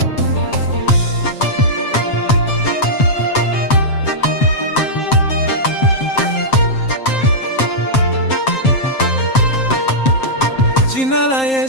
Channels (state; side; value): late; right; 7.6 ms